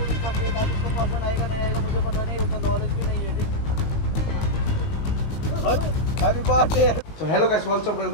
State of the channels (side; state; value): right; late; 19 ms